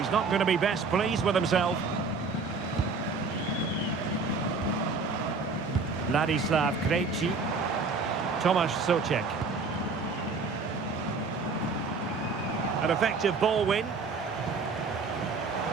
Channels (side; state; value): left; quieter; 4.3 dB